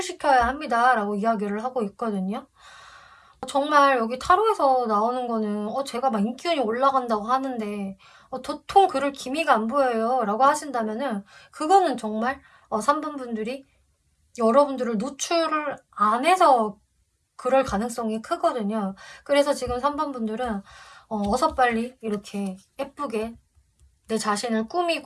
합니다 라고 이야기를 하고 있거든요. 정말 여기 타로에서 나오는 거는 제가 막 인기운이 올라간다고 하는데 도통 그럴 기미가 안 보여요 라고 하신다면은 그거는 정말 3번 분들이 여러분들을 노출을 안 해서 그럴 가능성이 크거든요. 그래서 지금 3번 분들은 어서 빨리 이렇게 예쁘게 내 자신을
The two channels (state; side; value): identical; both; correlation 1.00